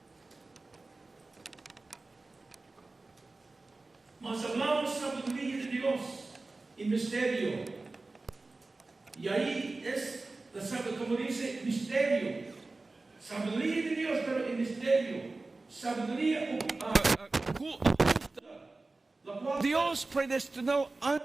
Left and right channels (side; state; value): left; quieter; 3.4 dB